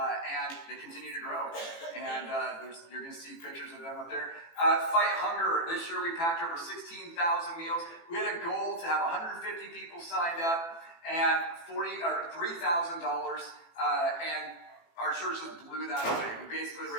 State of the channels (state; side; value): late; right; 18 ms